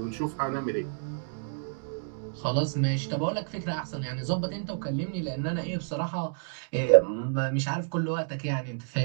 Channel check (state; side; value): silent; left; digital silence